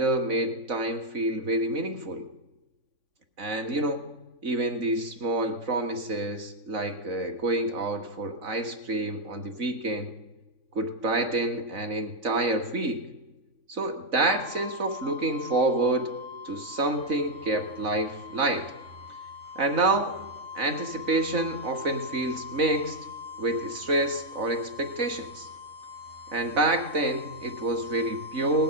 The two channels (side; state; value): left; late; 3.5 ms